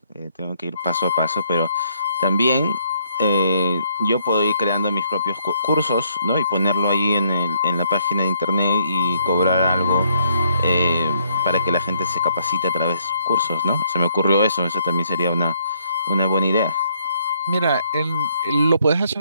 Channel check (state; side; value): inverted; both; correlation -0.69